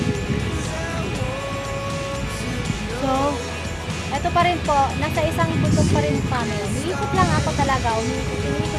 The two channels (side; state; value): both; identical; correlation 1.00